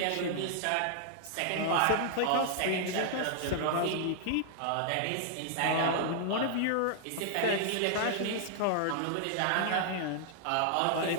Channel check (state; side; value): different; both; correlation -0.01